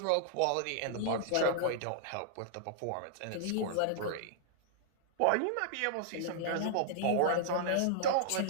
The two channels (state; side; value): different; both; correlation -0.01